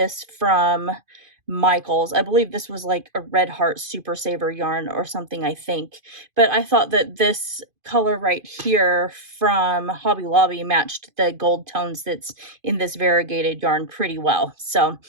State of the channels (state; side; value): late; left; 2.5 ms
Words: from Michael's. I believe this was like a Red Heart Super Saver yarn or something, I think. But I thought that this color right here from Hobby Lobby matched the gold tones that's in this variegated yarn pretty well. So